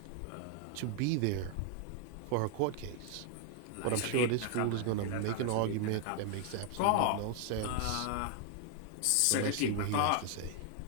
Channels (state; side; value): different; both; correlation 0.00